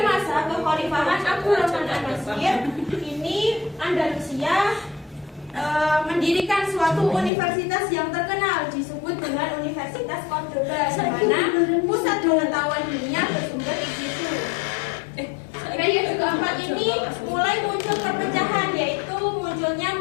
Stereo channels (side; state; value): right; drops out; at 7.3 s